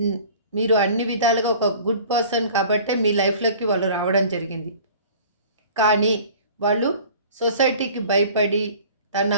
మీరు అన్ని విధాలుగా ఒక గుడ్ పర్సన్ కాబట్టే మీ లైఫ్‌లోకి వాళ్ళు రావడం జరిగింది. కానీ వాళ్ళు సొసైటీకి భయపడి తన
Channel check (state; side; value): inverted; both; correlation -0.46